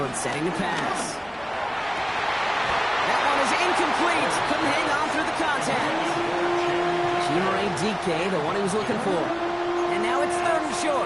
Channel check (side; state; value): both; identical; correlation 1.00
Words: setting the pass. That one is incomplete. Couldn't hang on through the contact. Chimere DK, the one he was looking for. And now it's 3rd and